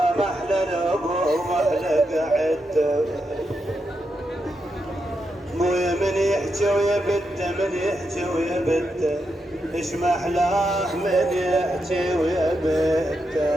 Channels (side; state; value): both; normal; correlation 0.84